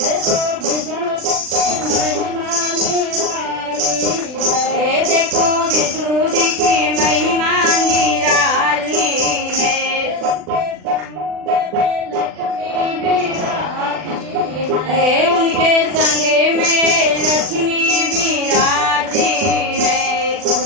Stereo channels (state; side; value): late; left; 40 ms